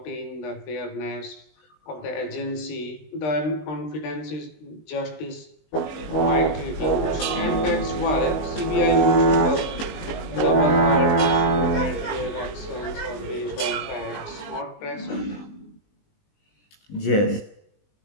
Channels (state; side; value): late; right; 20 ms